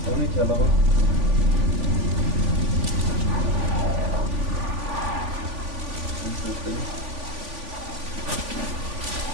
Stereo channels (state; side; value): late; left; 3.5 ms